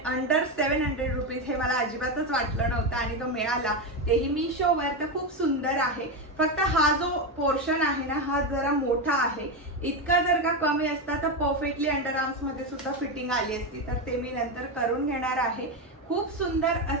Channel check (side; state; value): both; normal; correlation 0.12